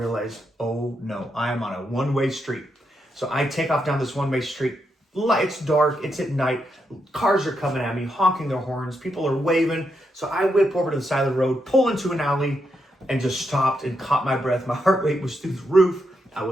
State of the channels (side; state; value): both; normal; correlation 0.82